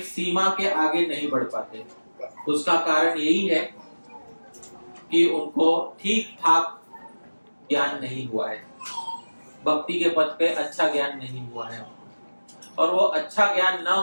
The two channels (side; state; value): both; inverted; correlation -1.00